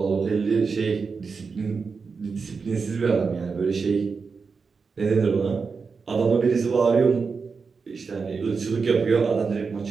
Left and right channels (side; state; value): left; quieter; 5.0 dB